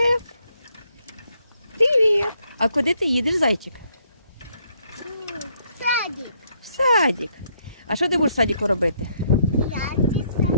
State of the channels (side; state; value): both; inverted; correlation -0.72